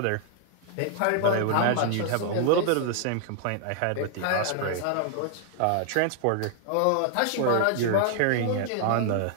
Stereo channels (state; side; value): different; both; correlation 0.00